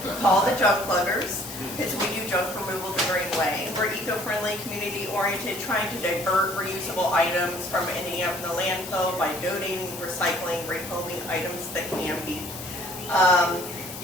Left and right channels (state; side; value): noise; left; hiss, 12 dB below the sound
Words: Call the Junk Pluggers, because we do junk removal the green way. We're eco-friendly, community-oriented, trying to divert reusable items from ending up in the landfill by donating, recycling, rehoming items that can be.